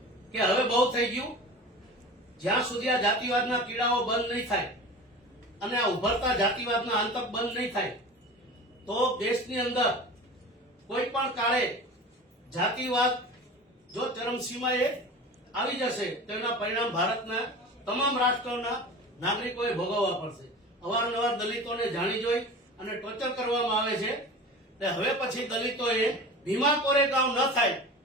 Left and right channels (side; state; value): both; normal; correlation 0.35